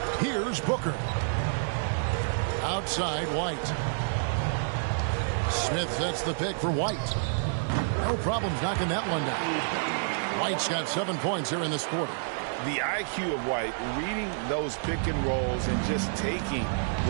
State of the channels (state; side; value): silent; left; digital silence